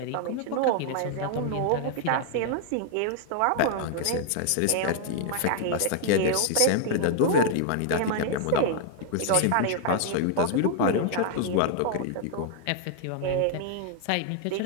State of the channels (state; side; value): different; both; correlation 0.00